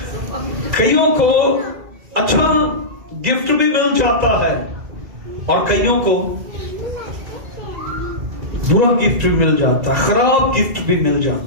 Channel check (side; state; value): left; late; 2.0 ms